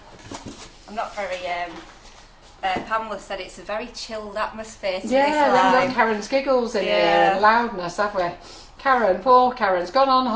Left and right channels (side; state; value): both; identical; correlation 1.00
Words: I'm not very, Pamela said it's a very chilled atmosphere to Yeah, this then we've live. got Karen's giggles in here Yeah. and loudness, have we? Karen, poor Karen's gone on